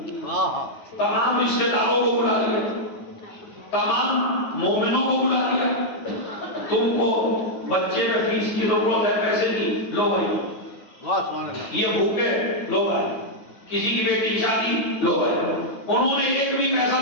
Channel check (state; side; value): late; right; 9.4 ms